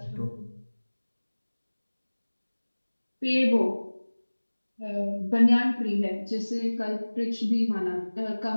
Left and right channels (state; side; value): inverted; both; correlation -1.00